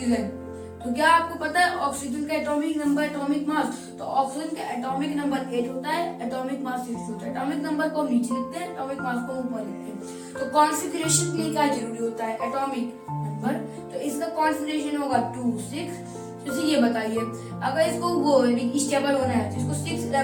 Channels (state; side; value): identical; both; correlation 1.00